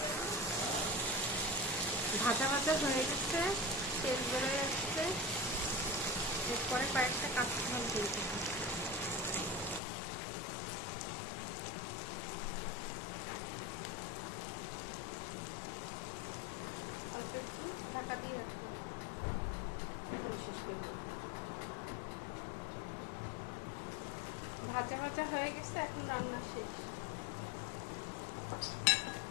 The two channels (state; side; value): drops out; right; at 9.8 s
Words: ভাজা ভাজা হয়ে গেছে, তেল বেরোয় যাচ্ছে। এরপরে কয়েকটা কাঁচা ঝাল দিয়ে দেবো। অল্প একটু ঢাকা দিয়ে রাখবো। ভাজা ভাজা হয়ে গেছে, এখন রান্না শেষ।